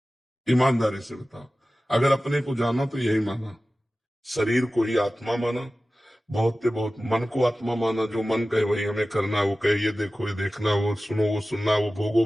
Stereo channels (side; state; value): both; normal; correlation 0.96